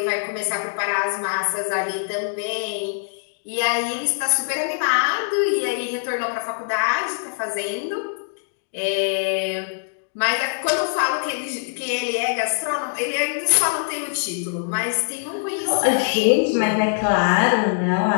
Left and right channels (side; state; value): right; silent; digital silence